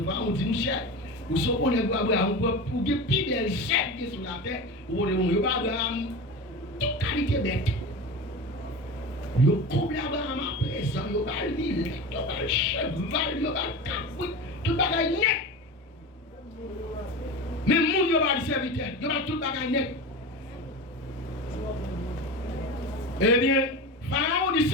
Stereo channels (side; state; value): both; normal; correlation 0.28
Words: pharaons disent, mon cher, vous savez Abraham, pour que plus belle chef qui est sur la terre, vous voyez Abraham, toute qualité bête. Vous couplez Abraham à présent, vous avez le mille, vous avez le cheval, vous avez le capouille, tout le bagage net. Mais moun yo pas de serviteur, yo pas tout bagage net. Eh bien, Pharaon dit,